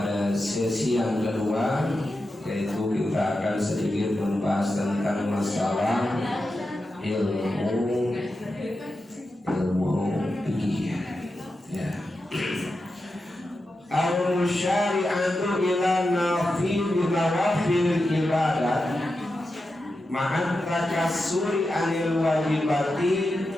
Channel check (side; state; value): both; normal; correlation 0.90